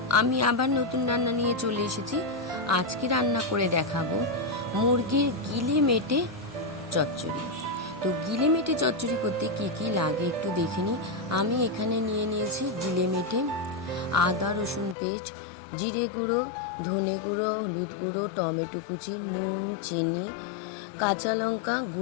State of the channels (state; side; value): drops out; right; at 15.0 s